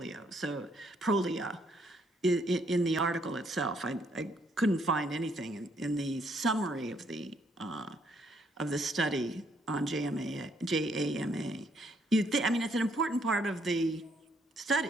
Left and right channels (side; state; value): both; normal; correlation 0.70